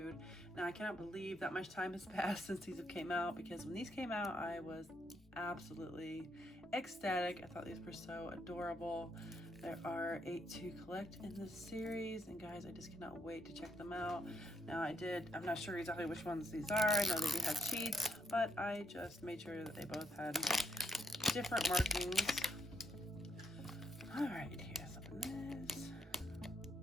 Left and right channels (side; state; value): both; normal; correlation 0.77